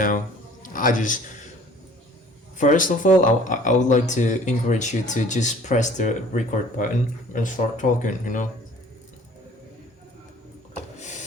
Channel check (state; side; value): normal; both; correlation 0.52